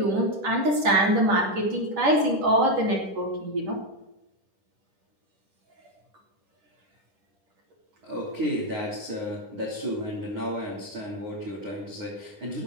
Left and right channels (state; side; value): late; left; 10 ms